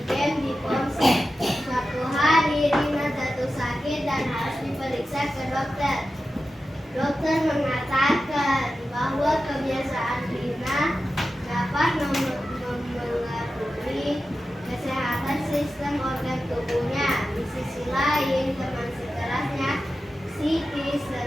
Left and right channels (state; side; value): normal; both; correlation 0.92